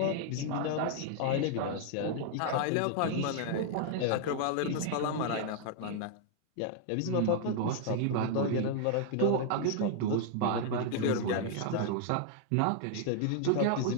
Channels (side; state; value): both; different; correlation 0.00